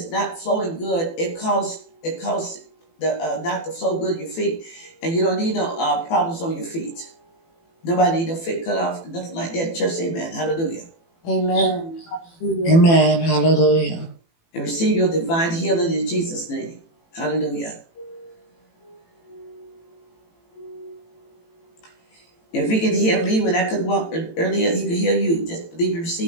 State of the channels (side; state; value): right; late; 18 ms